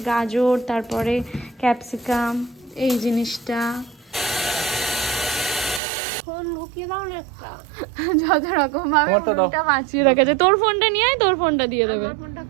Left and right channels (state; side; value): drops out; left; at 5.8 s